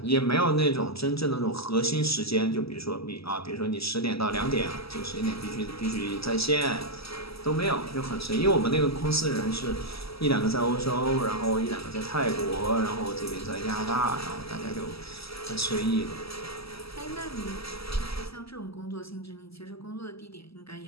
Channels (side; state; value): right; late; 0.76 ms